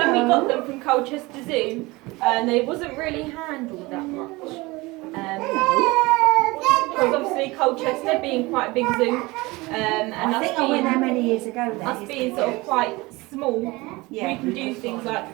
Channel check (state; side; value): quieter; left; 22.5 dB